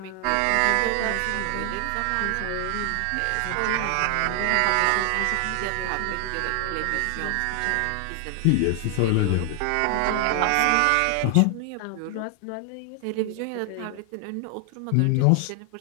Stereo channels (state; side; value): different; both; correlation 0.00